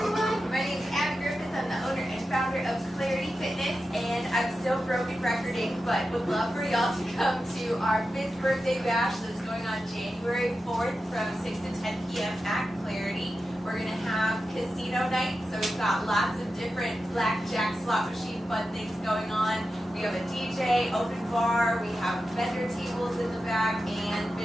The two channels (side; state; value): both; normal; correlation 0.91